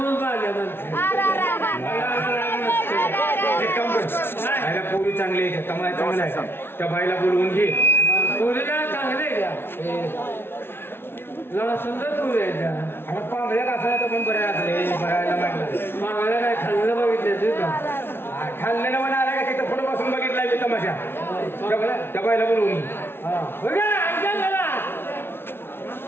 पाहिजे पोरी चांगली आहे कमाई चांगला आहे त्या बाईला बोलवून घे. पोरीला चांगले का जरा सुंदर पोरी आहे त्या. आता पांगळ्या कसं तर पण बऱ्या असले बघायला म्हटलं मागायला काय खाल्लं बघितलं का खाल्लेलं मला आला का तिथं पुढे बसून बघितला मी तमाशा त्या बाईला बोलवून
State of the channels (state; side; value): late; right; 0.11 ms